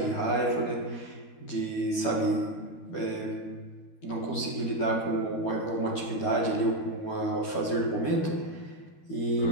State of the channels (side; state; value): right; late; 12 ms